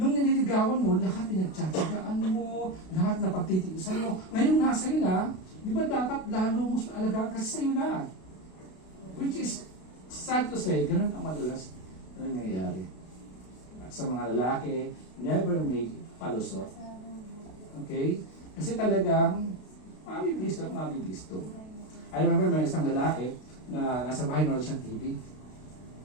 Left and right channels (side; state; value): right; late; 32 ms